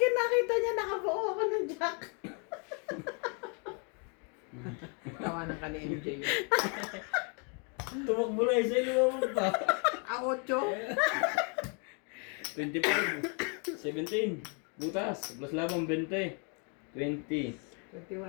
nakita niya nakabuo ako ng jack. Tawanan ka ni MJ. Tumakbo na isa. Lumabog pa. 8. 25. 17. Butas. Plus labang 20. 20. 21.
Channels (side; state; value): right; quieter; 37.6 dB